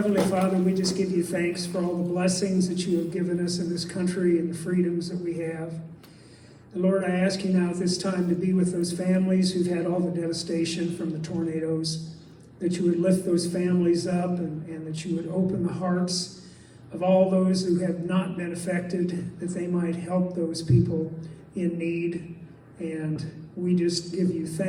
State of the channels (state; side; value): identical; both; correlation 1.00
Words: Father, we just give you thanks for all the blessings that you have given us in this country and the freedoms that we have. And Lord, I ask you now at this time to be with those families who've had all the devastation from the tornadoes, that you would lift those families up and that you would open the hearts of all those who have not been affected, that they might help those people in need. And we just give you